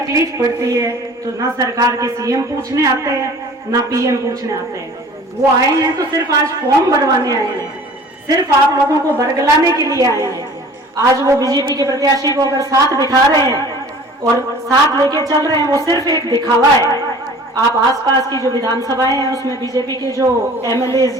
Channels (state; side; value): normal; both; correlation 0.46